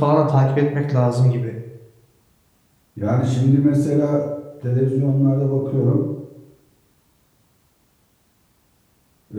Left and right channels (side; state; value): both; identical; correlation 1.00